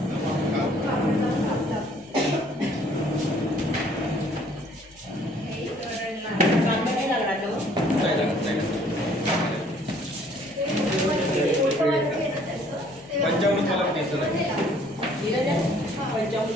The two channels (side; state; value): left; noise; hum, 28 dB below the sound